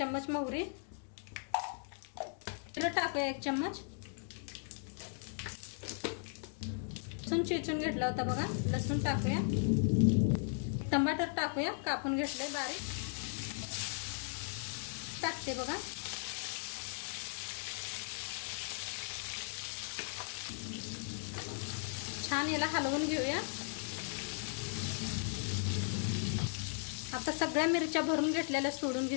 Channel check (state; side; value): silent; right; digital silence